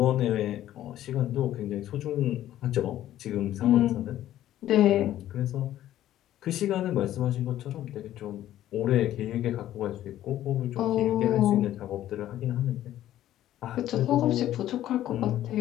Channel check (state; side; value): quieter; right; 12.9 dB